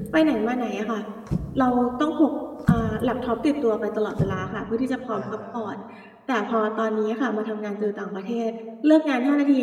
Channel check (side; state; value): both; identical; correlation 1.00